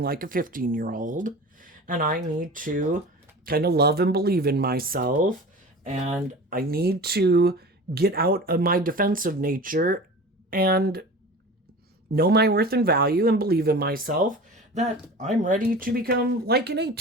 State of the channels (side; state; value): both; normal; correlation 0.36